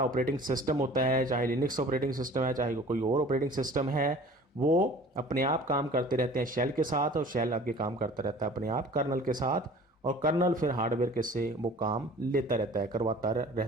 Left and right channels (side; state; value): both; normal; correlation 0.46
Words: ऑपरेटिंग सिस्टम होता है, चाहे लिनक्स ऑपरेटिंग सिस्टम है चाहे कोई और ऑपरेटिंग सिस्टम है, वो अपने आप काम करते रहते हैं शेल के साथ और शेल आगे काम करता रहता है अपने आप कर्नल के साथ, और कर्नल फिर हार्डवेयर के से वो काम लेता रहता है, करवाता